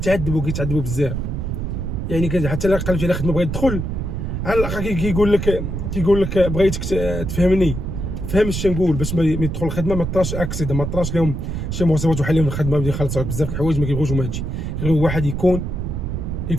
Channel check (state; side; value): noise; right; rumble, 3 dB below the sound